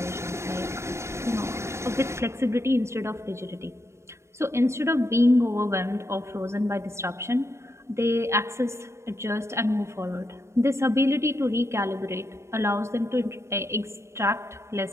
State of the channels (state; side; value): late; left; 0.13 ms